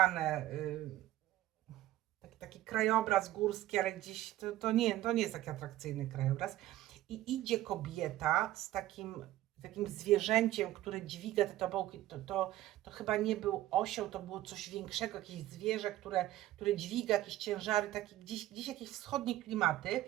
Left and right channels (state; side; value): quieter; left; 14.7 dB